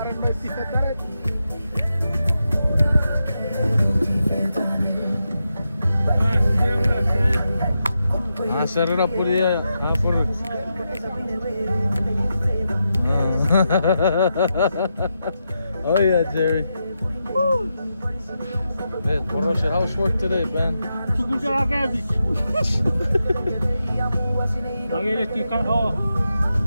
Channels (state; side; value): inverted; both; correlation -0.87